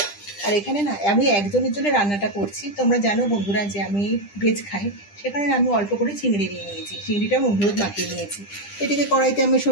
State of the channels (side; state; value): right; late; 10 ms